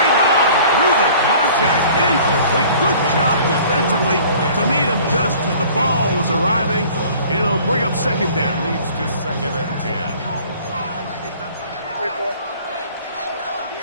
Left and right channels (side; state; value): both; inverted; correlation -0.49